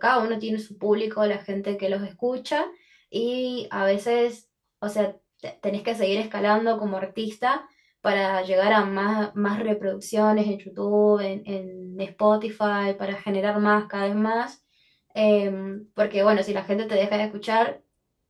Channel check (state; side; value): identical; both; correlation 1.00